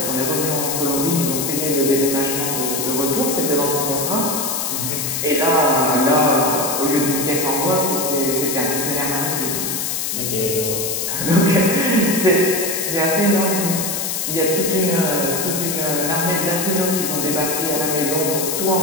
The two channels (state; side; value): noise; left; hiss, 2 dB below the sound